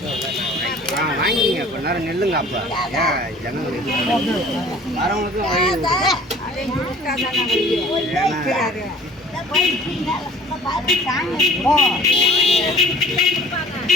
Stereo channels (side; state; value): both; normal; correlation 0.50